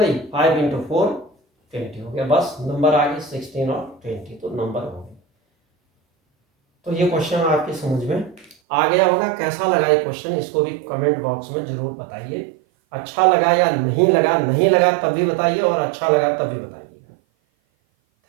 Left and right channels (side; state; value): left; drops out; at 8.6 s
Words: 5 इंटू 4 20 हो गया, बस नंबर आ गई 16 और 20, तो नंबर हो गए। तो ये क्वेश्चन आपकी समझ में आ गया होगा। कैसा लगा ये क्वेश्चन, इसको भी कमेंट बॉक्स में जरूर बताइए, अच्छा लगा या नहीं लगा, नहीं लगा तब भी बताइए, और अच्छा लगा तब भी बताइएगा।